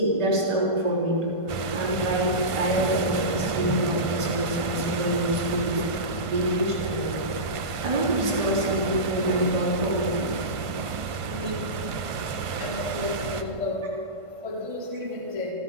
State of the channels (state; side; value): late; left; 1.5 ms